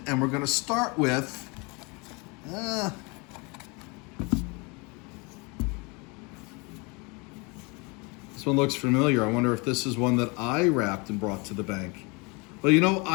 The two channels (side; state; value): right; quieter; 29.1 dB